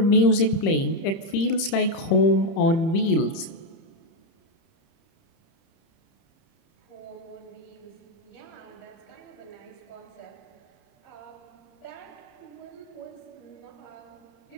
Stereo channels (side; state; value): right; late; 30 ms